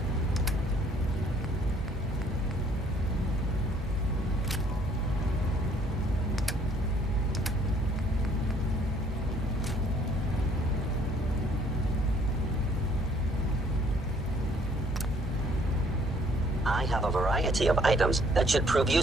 I have a variety of items that should prove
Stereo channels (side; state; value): both; normal; correlation 0.61